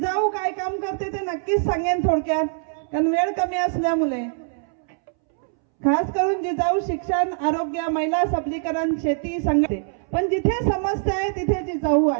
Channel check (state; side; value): silent; left; 63 dB below the other